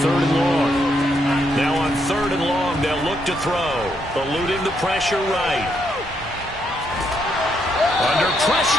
3rd and long. Now on 3rd and long, they'll look to throw. Eluding the pressure right. Under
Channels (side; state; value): both; normal; correlation 0.77